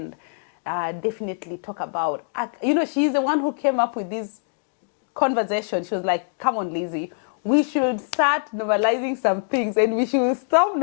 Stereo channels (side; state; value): right; silent; 63 dB below the other